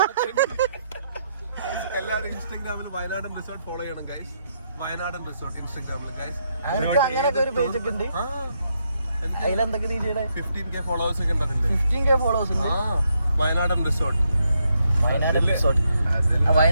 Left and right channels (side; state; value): both; inverted; correlation -0.78